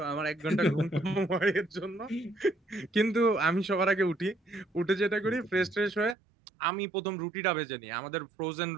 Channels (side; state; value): left; drops out; at 6.2 s